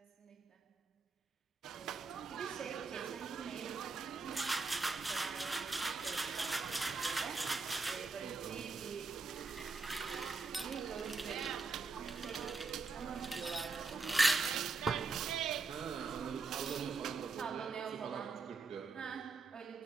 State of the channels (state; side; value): quieter; left; 4.2 dB